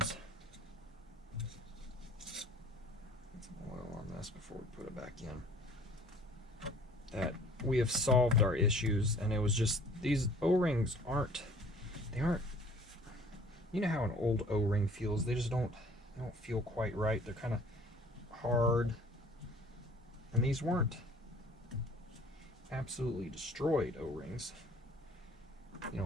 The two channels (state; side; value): normal; both; correlation 0.52